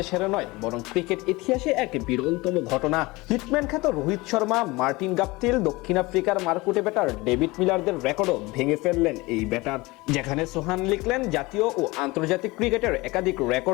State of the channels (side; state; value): right; quieter; 22.4 dB